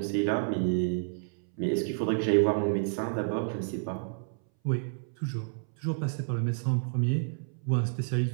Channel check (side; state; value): left; silent; 58 dB below the other